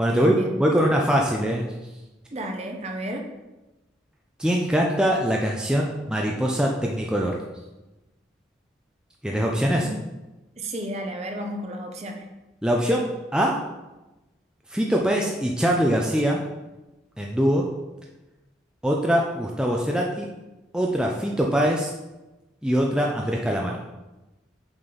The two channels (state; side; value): normal; both; correlation 0.75